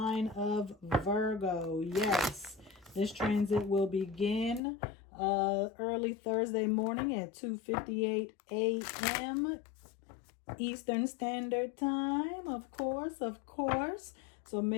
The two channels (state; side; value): drops out; right; at 4.6 s